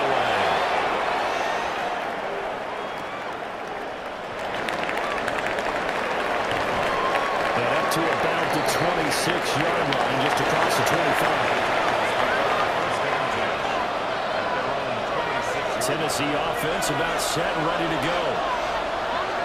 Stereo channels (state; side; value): identical; both; correlation 1.00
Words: And up to about the 26-yard line, just across the 25. Tennessee offense about set and ready to go.